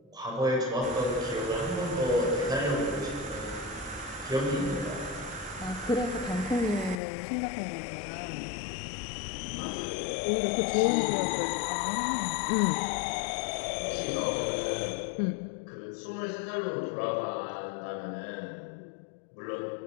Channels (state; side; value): drops out; right; at 7.0 s